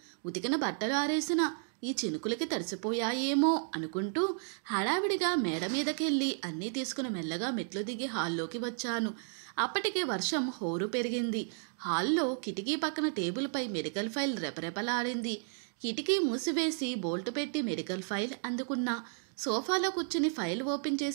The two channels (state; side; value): silent; left; 56 dB below the other